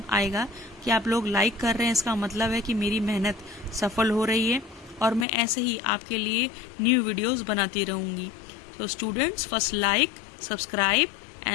आएगा कि आप लोग लाइक कर रहे हैं। इसका मतलब है कि मेरी मेहनत सफल हो रही है और मैं ऐसे ही आपके लिए न्यू वीडियोस बनाती रहूंगी। तो students, first like, subscribe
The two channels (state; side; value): drops out; right; at 5.2 s